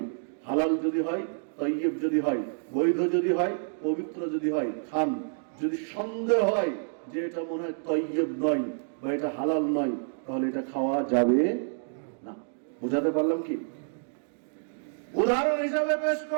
হালাল যদি হয়, তাইয়্যিব যদি হয়, বৈধ যদি হয়, পবিত্র যদি হয় খান। যদি সন্দেহ হয় যে এটা মনে হয় তাইয়্যিব নয় বা এটা হালাল নয়, তাহলে এটা খাওয়া যাবে না। বুঝাতে পারলাম কি? উদাহরণ হিসাবে পেশ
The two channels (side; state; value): left; silent; digital silence